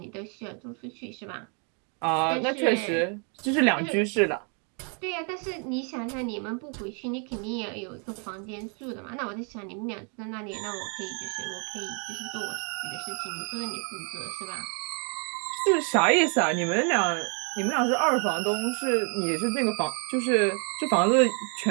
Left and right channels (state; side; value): quieter; left; 38.7 dB